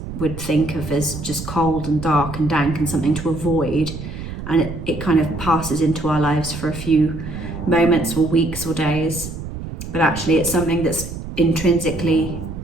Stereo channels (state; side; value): noise; right; rumble, 9 dB below the sound